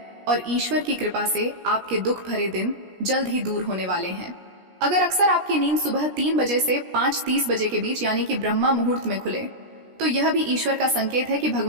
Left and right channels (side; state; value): left; late; 17 ms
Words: और ईश्वर की कृपा से आपके दुख भरे दिन जल्द ही दूर होने वाले हैं। अगर अक्सर आपकी नींद सुबह 3 बजे से 5:30 बजे के बीच यानी कि ब्रह्मा मुहूर्त में खुले तो यह भी ईश्वर का संकेत है कि